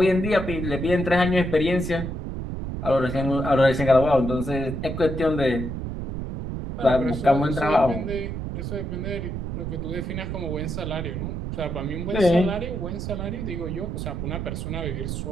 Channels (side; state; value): right; noise; rumble, 5 dB below the sound